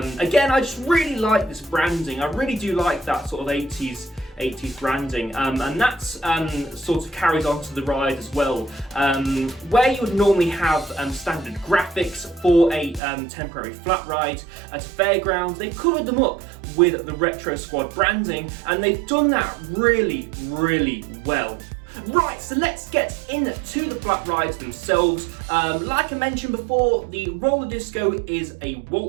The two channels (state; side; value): drops out; left; at 13.0 s